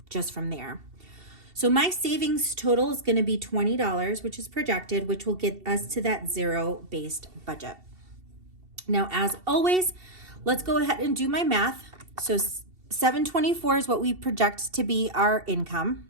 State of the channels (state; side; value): late; left; 2.7 ms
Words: just from there. So my savings total is going to be $20, which is projected, which will get us to that zero-based budget. Now, as always, let's go ahead and do my math. So $724 is what we project to be our income.